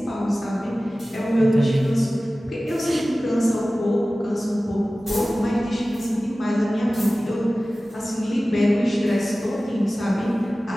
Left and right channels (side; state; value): both; normal; correlation 0.97